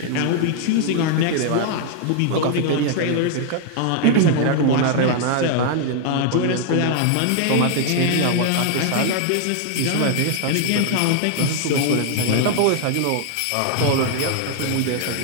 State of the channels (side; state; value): both; different; correlation 0.00